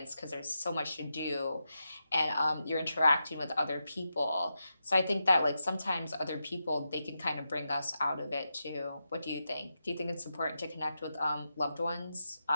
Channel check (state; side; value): inverted; both; correlation -0.88